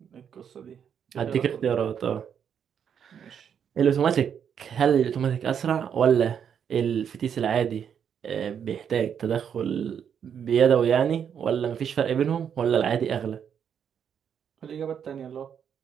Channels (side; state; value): left; quieter; 8.0 dB